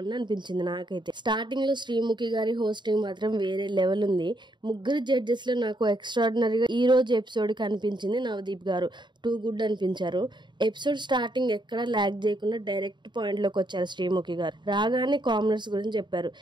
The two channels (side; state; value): left; late; 0.22 ms